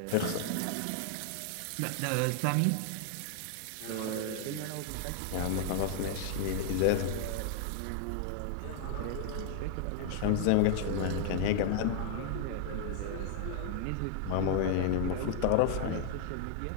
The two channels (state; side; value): different; both; correlation 0.00